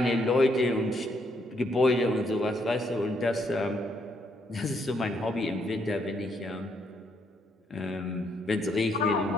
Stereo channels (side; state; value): both; normal; correlation 0.73